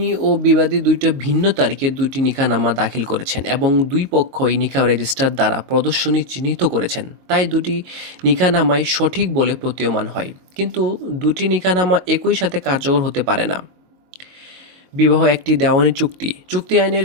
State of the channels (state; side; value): late; left; 22 ms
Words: ও বিবাদী দুইটা ভিন্ন তারিখে দুইটি নিকাহনামা দাখিল করেছেন এবং দুই পক্ষই নিকাহ রেজিস্টার দ্বারা প্রদর্শনী চিহ্নিত করেছেন, তাই দুটি নিকাহনামাই সঠিক বলে প্রতীয়মান হয়। কিন্তু দুটি নিকাহনামা একই সাথে কার্যকর হতে পারে না। বিবাহ একটি দেওয়ানি চুক্তি। চুক্তি আইনের